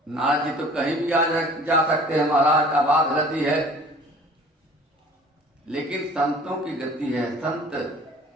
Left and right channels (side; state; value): both; normal; correlation 0.49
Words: नारद जी तो कहीं भी जा सकते हैं, महाराज का बात गति है, लेकिन संतों की गति है। संत